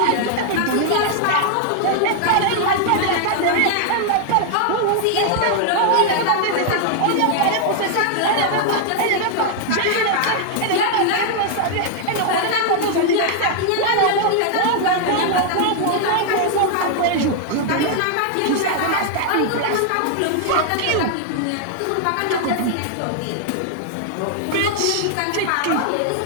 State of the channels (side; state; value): both; different; correlation 0.00